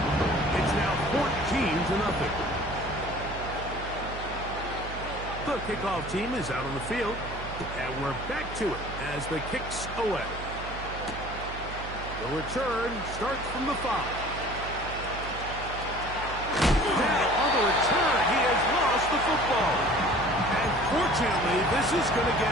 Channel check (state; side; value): noise; right; hum, 10 dB below the sound